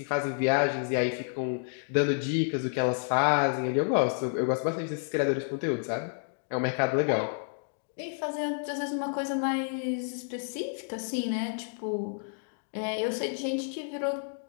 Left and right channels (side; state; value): right; silent; digital silence